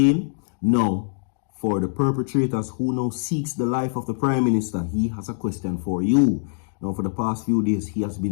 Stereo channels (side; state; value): right; silent; digital silence